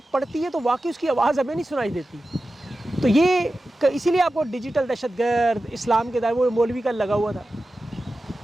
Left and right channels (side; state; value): both; normal; correlation 0.94